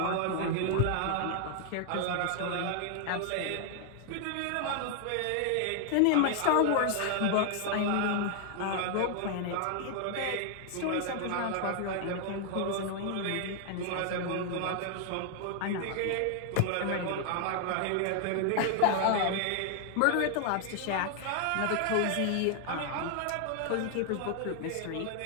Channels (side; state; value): both; different; correlation 0.00